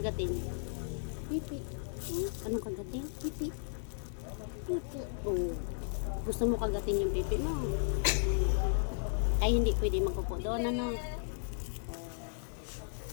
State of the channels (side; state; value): right; silent; digital silence